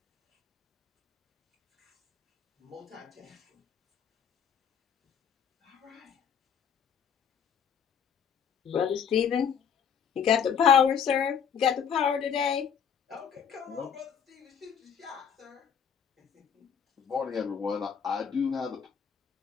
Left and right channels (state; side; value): quieter; right; 7.5 dB